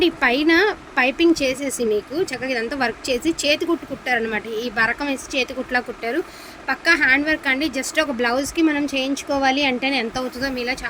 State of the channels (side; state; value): both; identical; correlation 1.00